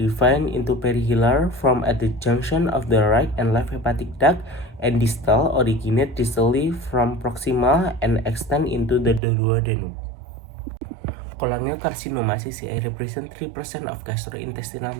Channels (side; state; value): left; drops out; at 9.2 s